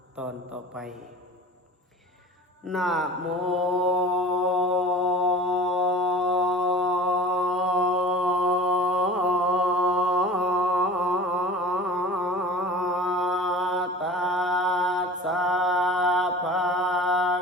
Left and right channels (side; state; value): both; normal; correlation 0.39